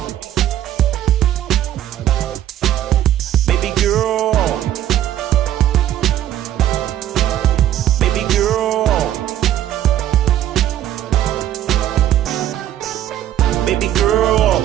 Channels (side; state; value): left; quieter; 11.8 dB